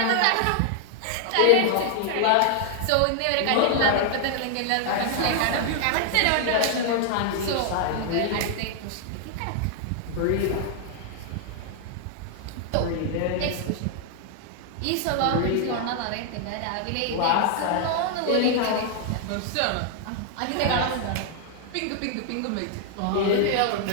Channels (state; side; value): different; both; correlation 0.00